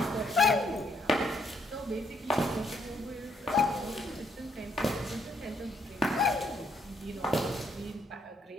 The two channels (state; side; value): normal; both; correlation 0.72